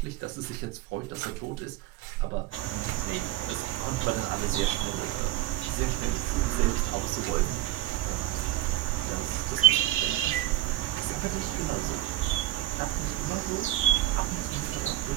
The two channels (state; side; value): quieter; left; 15.1 dB